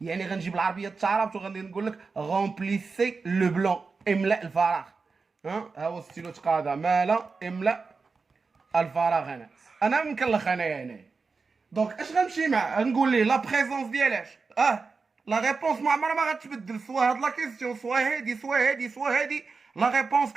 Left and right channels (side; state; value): left; quieter; 4.5 dB